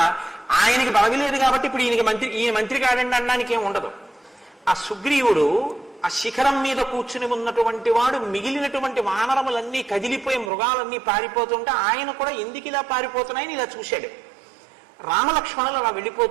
ఆయనకి పదవి లేదు కాబట్టి ఇప్పుడు ఈయన మంత్రి కాడండి అనడానికి ఏం ఉండదు. ఆ సుగ్రీవుడు ఆ శిఖరం మీద కూర్చుని ఉన్నటువంటి వాడు మిగిలినటువంటి వానరములన్నీ కదిలిపోయి మృగాలన్నీ పారిపోతుంటే ఆయన కూడా ఎందుకు ఇలా పారిపోతున్నాయని ఇలా చూశాడు. రామలక్ష్మణులు అలా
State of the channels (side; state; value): left; drops out; at 10.5 s